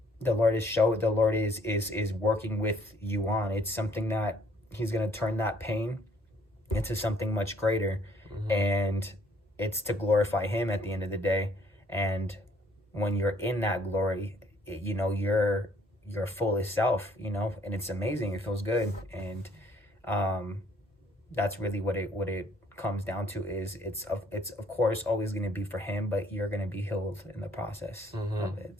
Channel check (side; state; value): both; normal; correlation 0.63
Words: the Lord is working with you on. It's something that he's going to turn that pain into something much greater, and it's to glorify him at the end of the day. And when you're in that glory, you know, you're your fullest self, you know, and it's amazing. It feels good. And that's really what it comes down to. Is it's of course always going to be for him, but you're going to be healed in the process of it.